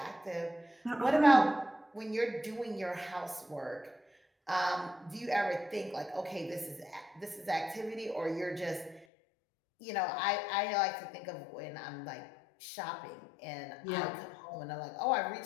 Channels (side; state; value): right; drops out; at 9.1 s